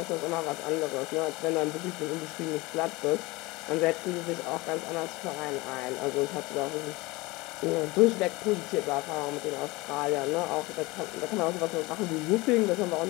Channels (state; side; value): quieter; right; 22.4 dB